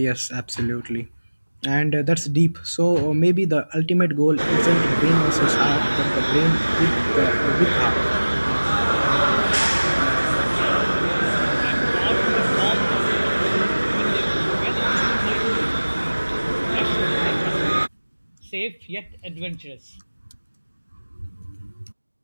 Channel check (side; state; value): both; inverted; correlation -1.00